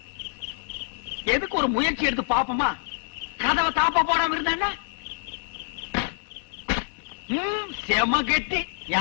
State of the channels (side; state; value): right; silent; digital silence